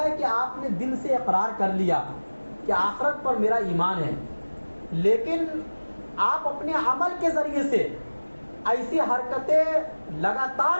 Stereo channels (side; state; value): both; inverted; correlation -1.00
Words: ہے کہ آپ نے دل سے اقرار کر لیا کہ آخرت پر میرا ایمان ہے، لیکن آپ اپنے عمل کے ذریعے سے ایسی حرکتیں لگاتار